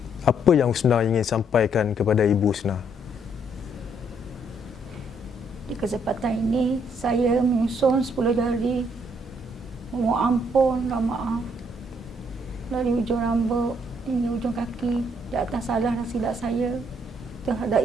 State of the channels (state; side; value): normal; both; correlation 0.70